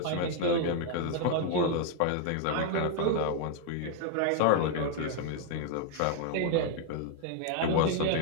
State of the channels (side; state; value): both; different; correlation 0.01